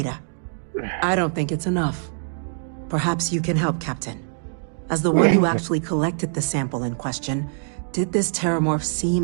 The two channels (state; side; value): silent; left; digital silence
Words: I don't think it's enough. Perhaps you can help, Captain. As the one who actually collected the sample in question, did this terramorph